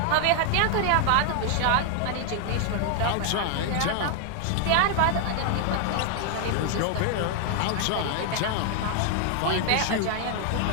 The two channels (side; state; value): both; different; correlation 0.00